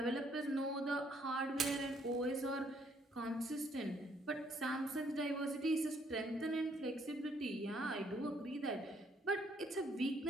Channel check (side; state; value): both; normal; correlation 0.68